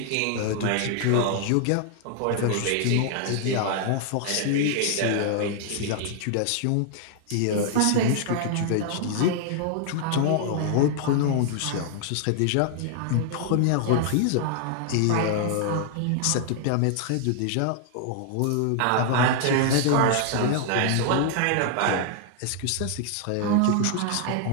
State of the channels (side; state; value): both; different; correlation 0.00